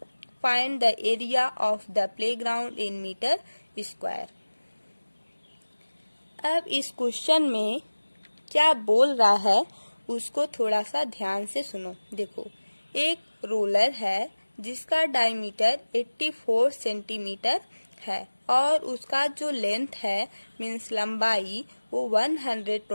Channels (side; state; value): both; inverted; correlation -1.00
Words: Find the area of the playground in meter square. अब इस क्वेश्चन में क्या बोल रहा है उसको थोड़ा सा ध्यान से सुनो। देखो एक रोलर है जिसका डायमीटर 84 सेंटीमीटर है और उसका जो लेंथ है मीन्स लंबाई वो